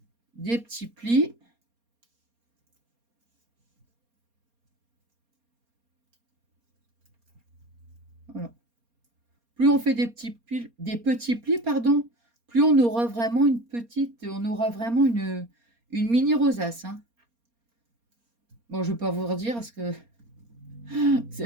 des petits plis. Voilà. Plus on fait des petits plis, pardon, plus on aura vraiment une mini rosace. Hein. Bon, je ne vais pas vous redire parce que vous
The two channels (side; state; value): left; late; 4.3 ms